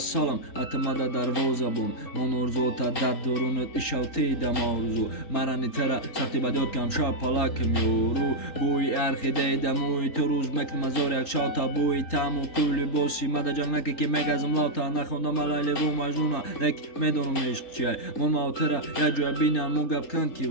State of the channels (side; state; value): right; late; 3.9 ms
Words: اتمده در وزبون من ارزو تا در درونت ایشالتی دم آرزو مرانی تره سختی بدیاد کم شا پلاکم یورو بوی ارخی دیدموی تو روز مکنم از یک شاوتا بوی تمو کولی بوسی مده جنگ نکه که مگزم لاتا نخوندم علیلی و مجنونا لک میدونم عشق چیه من ماوتره یک جوی بینم موگب کن کی